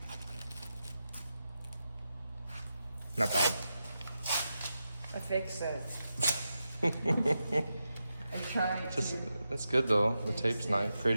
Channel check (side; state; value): both; inverted; correlation -0.89